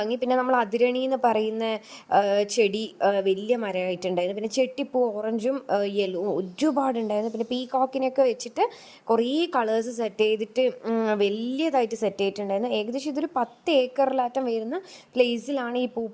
പിന്നെ നമ്മൾ അതിരണി എന്ന് പറയുന്ന ചെടി വലിയ മരമായിട്ടുണ്ടായിരുന്നു. പിന്നെ ചെട്ടിപ്പൂ ഓറഞ്ചും യെല്ലോ ഒരുപാടുണ്ടായിരുന്നു. പിന്നെ പീകോക്കിനൊക്കെ വെച്ചിട്ട് കുറേ കളേഴ്സ് സെറ്റ് ചെയ്തിട്ട് വലിയതായിട്ട് സെറ്റ് ചെയ്തിട്ടുണ്ടായിരുന്നു. ഏകദേശം ഇതൊരു 10 ഏക്കറിലാറ്റം വരുന്ന പ്ലേസിലാണ് ഈ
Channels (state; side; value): identical; both; correlation 1.00